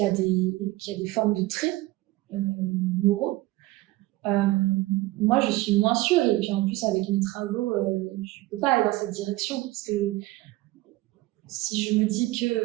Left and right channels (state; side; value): quieter; left; 18.8 dB